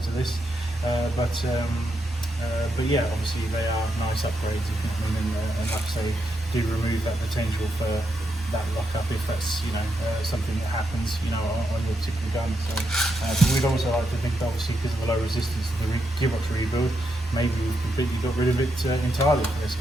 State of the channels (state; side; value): normal; both; correlation 0.82